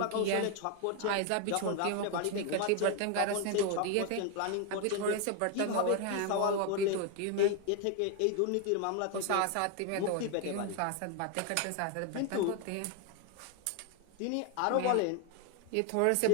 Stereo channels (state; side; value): different; both; correlation 0.01